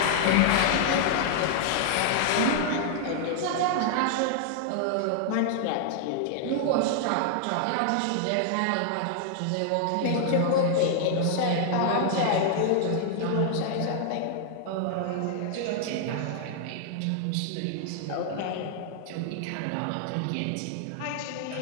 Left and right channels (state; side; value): different; both; correlation -0.01